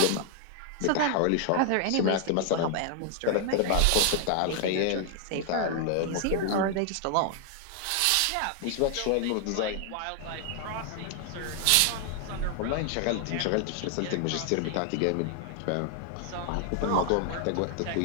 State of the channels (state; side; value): different; both; correlation 0.00